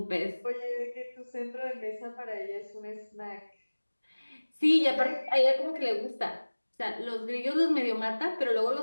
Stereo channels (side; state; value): both; inverted; correlation -1.00